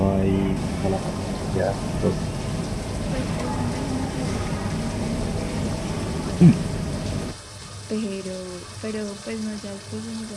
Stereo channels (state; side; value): identical; both; correlation 1.00